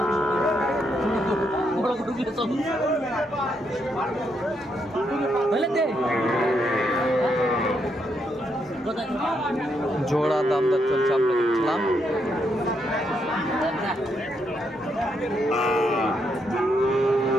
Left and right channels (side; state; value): both; normal; correlation 0.78